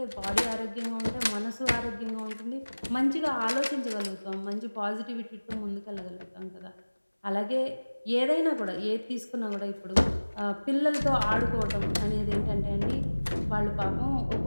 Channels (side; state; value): both; inverted; correlation -1.00